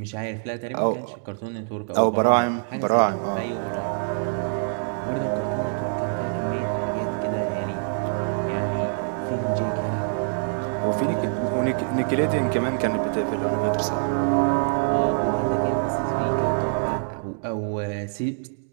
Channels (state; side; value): silent; left; digital silence